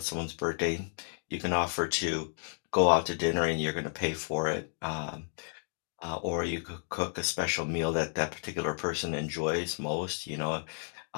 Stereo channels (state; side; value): silent; right; digital silence